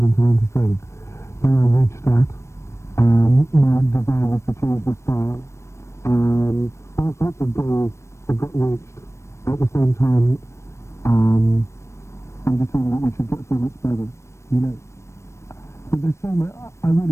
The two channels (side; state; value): right; late; 0.13 ms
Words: and to learn to sing. Then I reached that. My desire was to change the style. All sorts of goals have got reached. At the same time, I'm just saying that we should get so much better, you know. But there's so much, I really